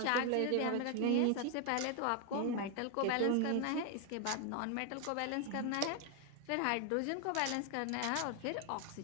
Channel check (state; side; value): different; both; correlation 0.00